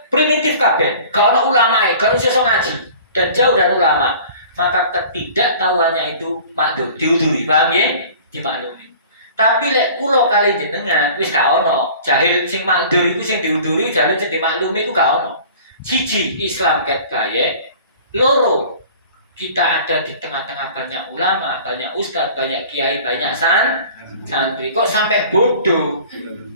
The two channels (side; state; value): both; inverted; correlation -0.45